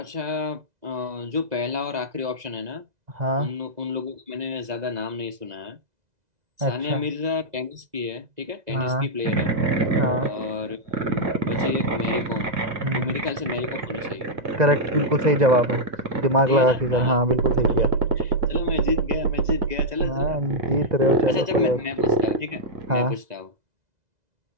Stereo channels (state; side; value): late; left; 2.0 ms